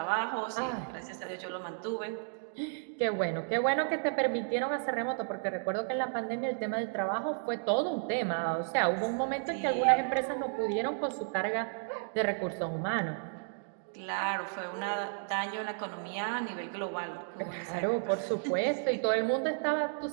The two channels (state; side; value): silent; left; digital silence